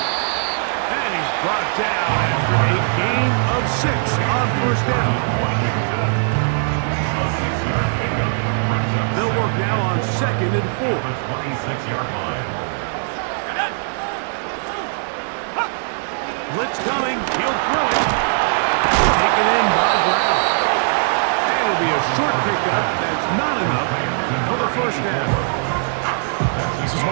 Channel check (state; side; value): silent; left; digital silence